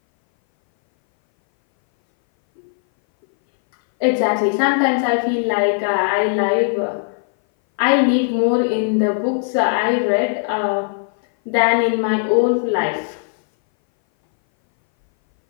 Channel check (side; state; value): right; silent; 61 dB below the other